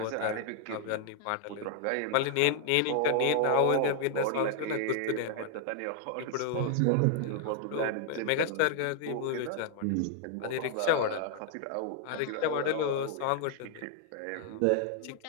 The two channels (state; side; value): different; both; correlation 0.00